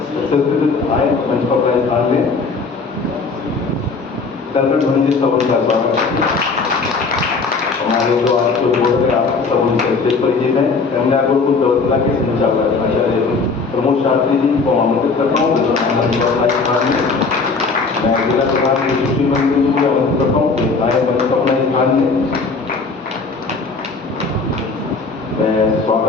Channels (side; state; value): right; quieter; 4.4 dB